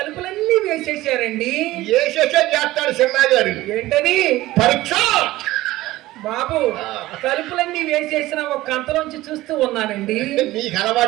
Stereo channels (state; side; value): quieter; left; 17.2 dB